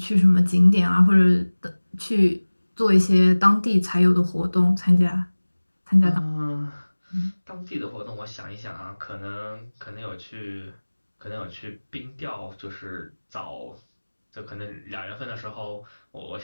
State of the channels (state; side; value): inverted; both; correlation -1.00